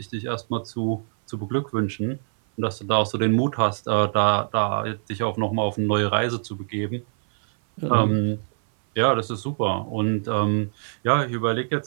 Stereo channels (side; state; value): left; silent; 58 dB below the other